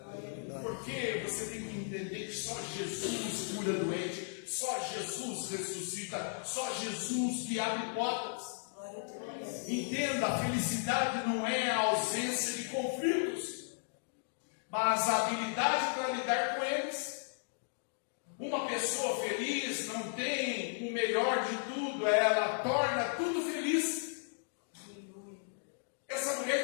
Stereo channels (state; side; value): silent; right; digital silence